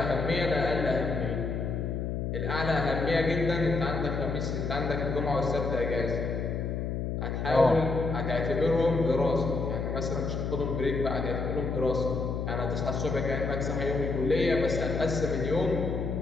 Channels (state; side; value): noise; left; hum, 2 dB below the sound